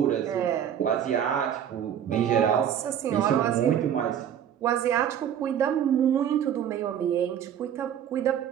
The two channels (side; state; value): left; quieter; 9.4 dB